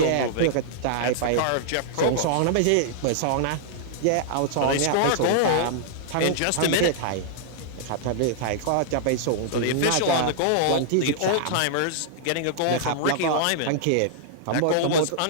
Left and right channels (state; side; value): different; both; correlation -0.01